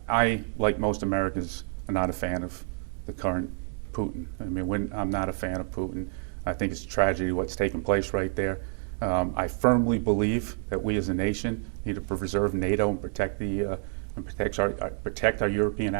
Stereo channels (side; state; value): left; silent; 59 dB below the other